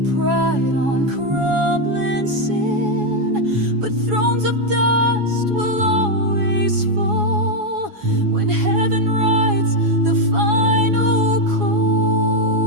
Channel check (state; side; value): late; left; 7.2 ms